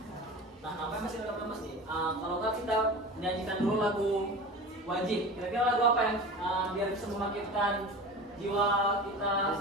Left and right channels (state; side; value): normal; both; correlation 0.33